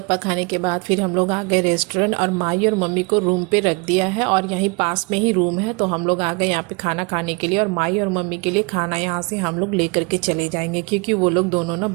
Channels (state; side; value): quieter; left; 29.8 dB